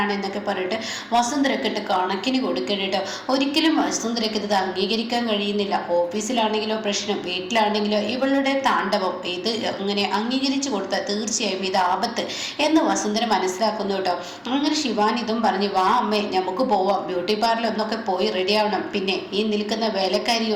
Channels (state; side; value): identical; both; correlation 1.00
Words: എന്നൊക്കെ പറഞ്ഞിട്ട് വസുന്ധരക്ക് ഇട്ട് കണക്കിന് കൊടുക്കണം കേട്ടോ. ഒരിക്കലും വസുന്ധരക്ക് ഇത് അംഗീകരിക്കാൻ കഴിയുന്നില്ല. ഓഫീസിലാണെങ്കിലോ പ്രശ്നം, വീട്ടിലാണെങ്കിലോ ഇവളുടെ താണ്ഡവം. ഇത് അങ്ങനെ അംഗീകരിച്ചു കൊടുത്താൽ തീർച്ചയായും ഇത് ആപത്ത് എന്ന് വസുന്ധര മനസ്സിലാക്കുന്നു കേട്ടോ. അങ്ങനെ ശിവാനി ഇതും പറഞ്ഞ് വാ അമ്മേ നമുക്ക് പോവാം, ബ്യൂട്ടി പാർലർ ഒന്നൊക്കെ പോയി റെഡി ആവണം. പിന്നെ ഈ നിൽക്കുന്ന